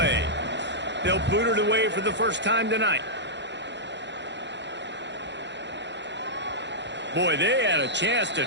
They'll boot it away for the first time tonight. Boy, they had a chance to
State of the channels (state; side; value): late; left; 0.52 ms